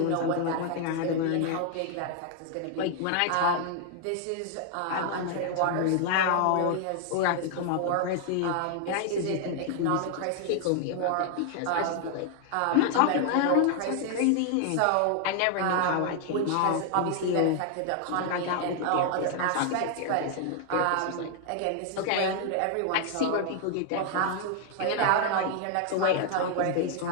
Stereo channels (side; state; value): both; different; correlation 0.00